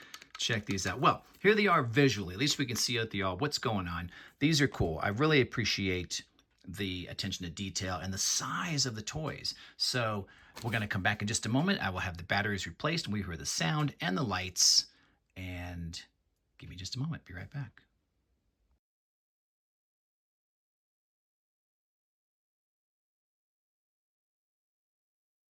check these out. Well, here they are visually. At least we can see out the all what's going on. These are cool. I really appreciate the attention to detail and the size of the toys. So we're going to come back in just a moment. I will have the batteries replaced and we hear the sound and the lights. And give me just a moment. Be right back.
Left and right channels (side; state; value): both; identical; correlation 1.00